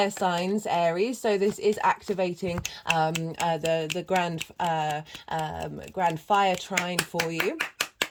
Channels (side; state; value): both; identical; correlation 1.00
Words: signs, Aries. So this is activating the grand fire trine for you,